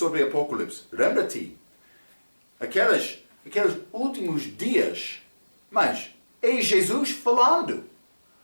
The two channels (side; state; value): both; inverted; correlation -1.00